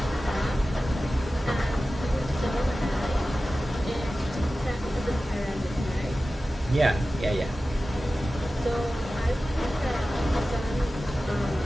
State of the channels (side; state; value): both; normal; correlation 0.95